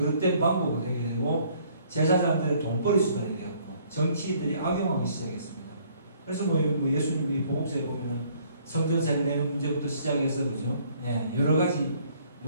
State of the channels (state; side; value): inverted; both; correlation -0.62